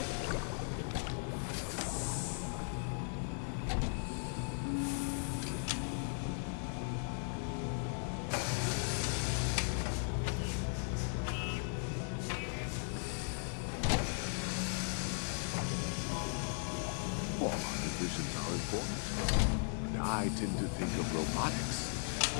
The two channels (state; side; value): silent; right; 53 dB below the other